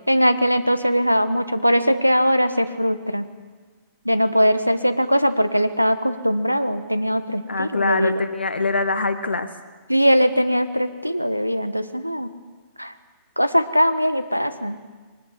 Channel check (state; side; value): inverted; both; correlation -0.92